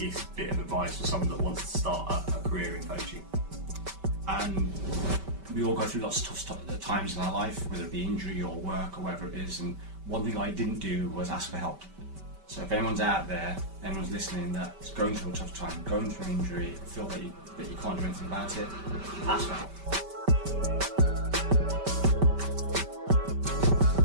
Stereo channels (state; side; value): late; left; 5.2 ms